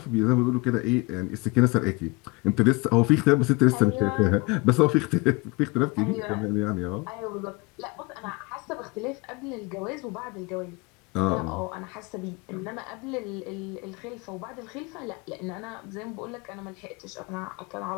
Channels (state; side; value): quieter; right; 26.8 dB